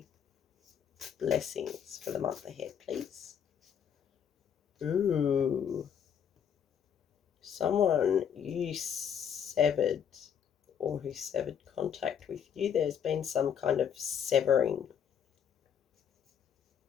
Blessings for the month ahead, please. Ooh. Someone you severed or who severed contact with you. There's been some kind of severing.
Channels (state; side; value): quieter; right; 8.2 dB